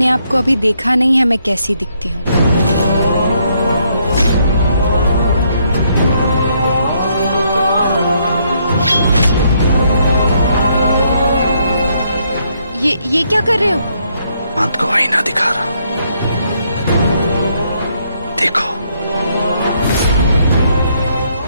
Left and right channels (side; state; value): both; inverted; correlation -0.73